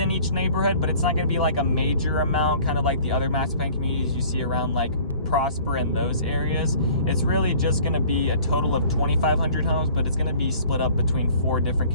each neighborhood, but it's not gonna be like a major amount, kind of like the other master plan communities you see around like Prosper in those areas. It's really just going to be a total of 2,500 homes, but it's going to be split up between 4 different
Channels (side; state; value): both; inverted; correlation -0.50